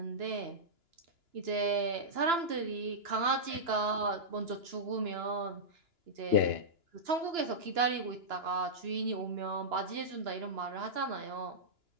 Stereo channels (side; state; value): left; late; 2.9 ms